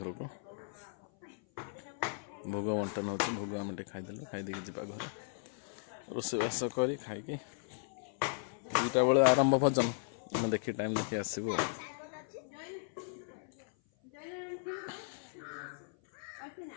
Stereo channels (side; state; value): right; silent; 53 dB below the other